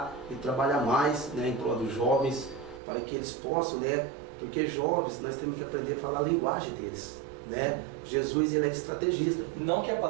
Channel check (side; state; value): left; drops out; at 2.8 s